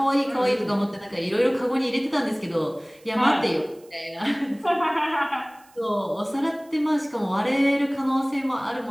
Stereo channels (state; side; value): noise; right; hiss, 29 dB below the sound